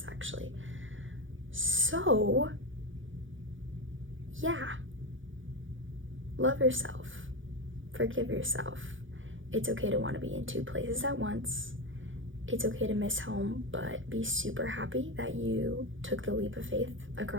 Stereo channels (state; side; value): late; left; 0.57 ms